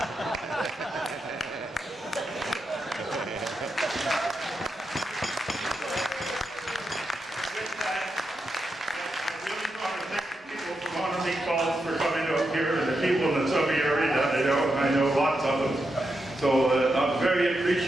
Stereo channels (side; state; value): both; normal; correlation 0.86